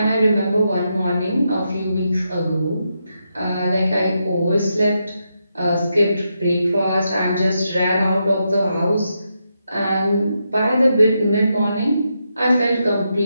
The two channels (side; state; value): both; inverted; correlation -0.84